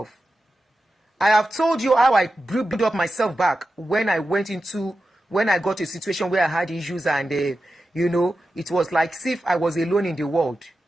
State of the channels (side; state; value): both; normal; correlation 0.92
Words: I have told you how I built up myself back when I got to a situation where I had issues and, it was like as if I was alone in the world.